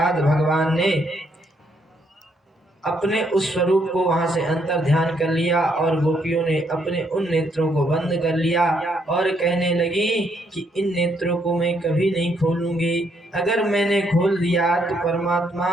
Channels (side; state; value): both; normal; correlation 0.73